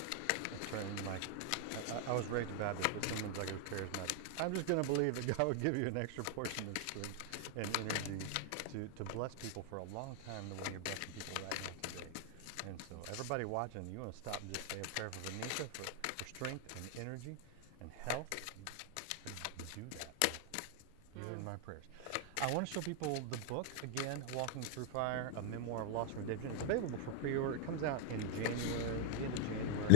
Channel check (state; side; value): different; both; correlation 0.00